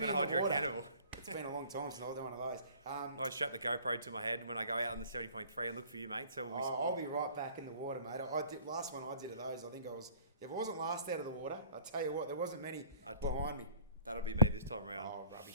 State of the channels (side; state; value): both; inverted; correlation -0.53